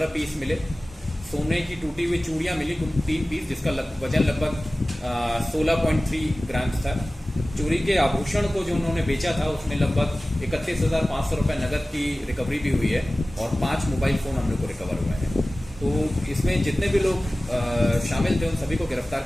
पीस मिले, सोने की टूटी हुई चूड़ियाँ मिली कुल 3 पीस जिसका वजन लगभग 16.3 ग्राम था। चोरी के आभूषण को जो उन्होंने बेचा था उसमें लगभग 31,500 रुपये नकद की रिकवरी भी हुई है और 5 मोबाइल फ़ोन हम लोग को रिकवर हुए हैं। तो इसमें जितने भी लोग शामिल थे उन सभी को गिरफ्तार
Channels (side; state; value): both; normal; correlation 0.97